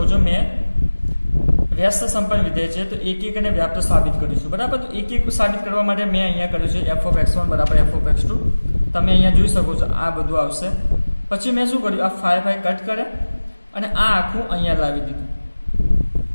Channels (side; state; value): both; inverted; correlation -1.00